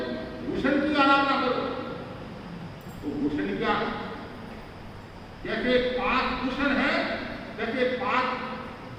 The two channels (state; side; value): identical; both; correlation 1.00